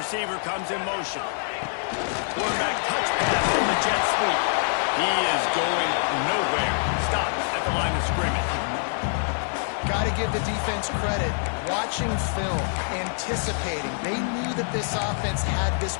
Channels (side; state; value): right; silent; 61 dB below the other